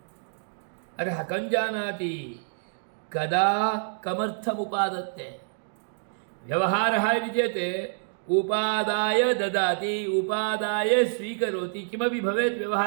अतः कं जानाति कदा कमर्थमुपादत्ते व्यवहारः इति चेत् उपादाय ददाति उपादाय स्वीकरोति किमपि भवेत्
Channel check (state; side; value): silent; left; digital silence